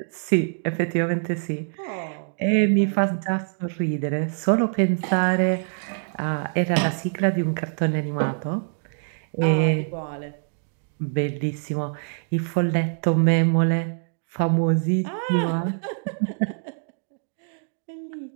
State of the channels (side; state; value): left; silent; digital silence